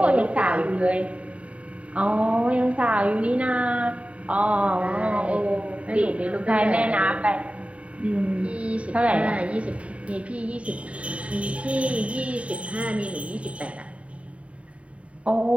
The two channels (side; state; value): left; late; 0.064 ms